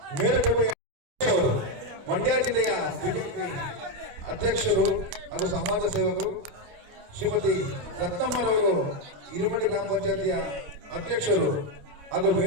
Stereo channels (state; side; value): late; left; 29 ms